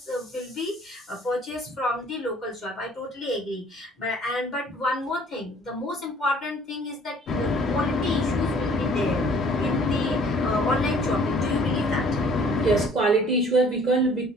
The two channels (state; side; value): normal; both; correlation 0.55